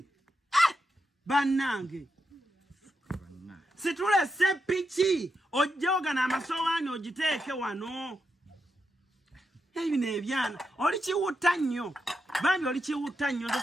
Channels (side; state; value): both; normal; correlation 0.85